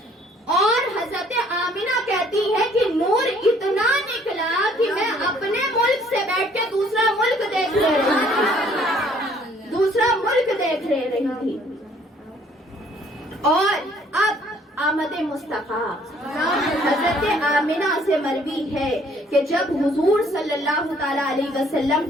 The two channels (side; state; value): both; normal; correlation 0.60